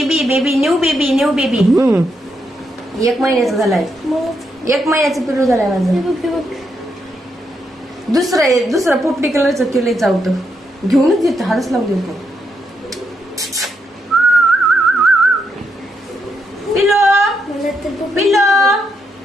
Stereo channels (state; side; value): normal; both; correlation 0.80